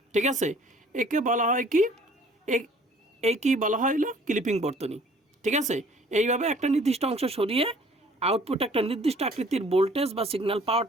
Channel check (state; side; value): normal; both; correlation 0.55